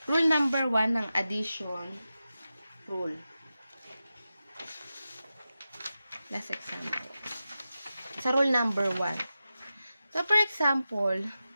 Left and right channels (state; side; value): inverted; both; correlation -0.93